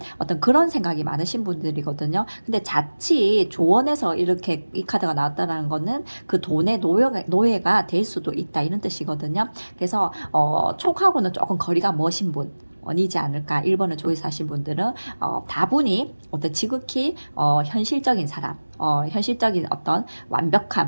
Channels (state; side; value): inverted; both; correlation -1.00